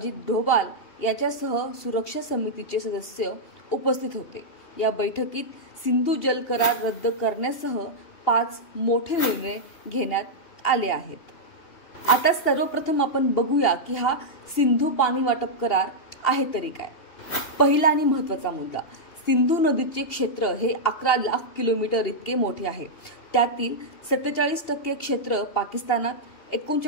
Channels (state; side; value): late; right; 2.8 ms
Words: डोभाल याच्यासह सुरक्षा समितीचे सदस्य उपस्थित होते। या बैठकीत सिंधू जल करार रद्द करण्यासह 5 मोठे निर्णय घेण्यात आले आहेत। आता सर्वप्रथम आपण बघूया की हा सिंधू पाणी वाटप करार आहे तरी काय। पहिला आणि महत्त्वाचा मुद्दा, सिंधू नदीचे क्षेत्र हे 11 लाख किलोमीटर इतके मोठे आहे। त्यातील 47% क्षेत्र पाकिस्तानात,